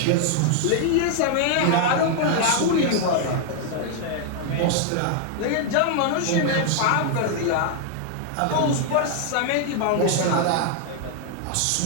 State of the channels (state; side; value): different; both; correlation 0.00